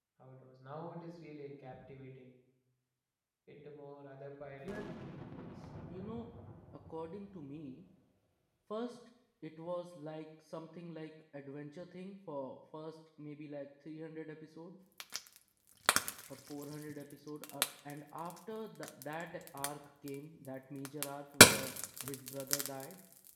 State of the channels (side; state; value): both; identical; correlation 1.00